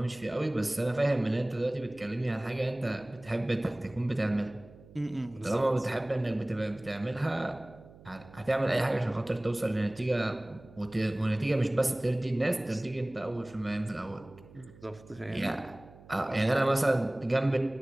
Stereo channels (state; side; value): noise; right; hum, 22 dB below the sound